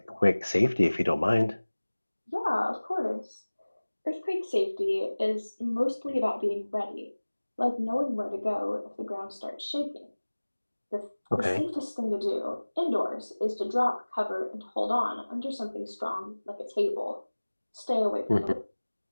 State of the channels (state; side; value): inverted; both; correlation -1.00